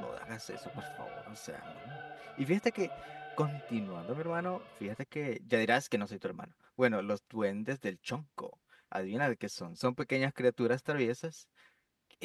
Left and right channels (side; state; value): both; identical; correlation 1.00